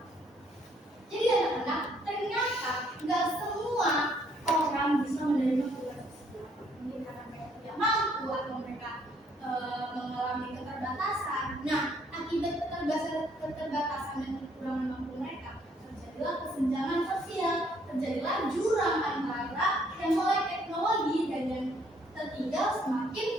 keterbatasan dan kekurangan mampu mereka, terjadilah kesenjangan sosial, terjadilah jurang antara yang melek teknologi dan yang tertinggal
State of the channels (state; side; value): normal; both; correlation 0.66